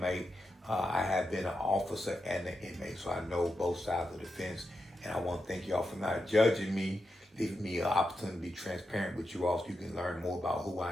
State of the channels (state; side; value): normal; both; correlation 0.87